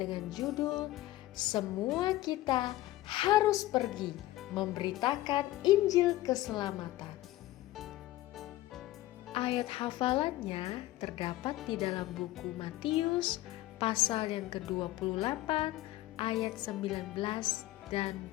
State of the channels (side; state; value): right; quieter; 16.4 dB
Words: judul Semua Kita Harus Pergi Memberitakan Injil Keselamatan. Ayat hafalannya terdapat di dalam buku Matius pasal yang ke-28 ayat 19 dan